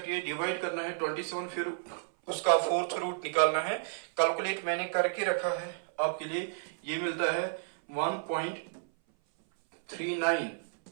डिवाइड करना है 27, फिर उसका 4th रूट निकालना है। कैलकुलेट मैंने करके रखा है आपके लिए, ये मिलता है 1.39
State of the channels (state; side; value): silent; left; 57 dB below the other